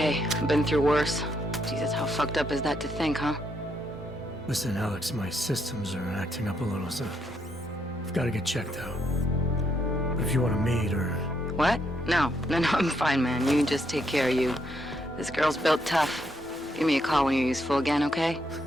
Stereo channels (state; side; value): normal; both; correlation 0.76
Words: I've been through worse. Jesus, how fucked up is that to think, huh? Listen, Alex, my systems are acting up a little, so I've got to get checked out. But if you want to meet or... What? No, I'm fine, man. You just take care of you. This girl's built tough. Give me a call when you're useful again, okay?